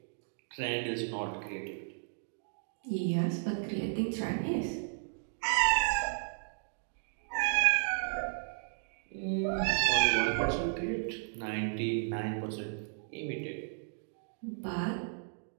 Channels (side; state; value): left; silent; digital silence